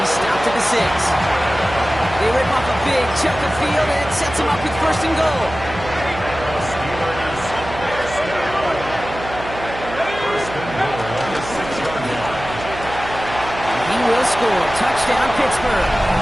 stopped at the 6. They rip off a big chunk of field, and it sets him up with first and goal. He will score. Touchdown, Pittsburgh.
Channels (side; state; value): right; noise; hum, 11 dB below the sound